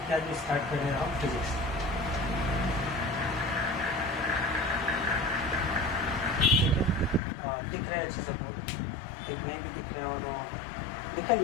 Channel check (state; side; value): drops out; right; at 7.2 s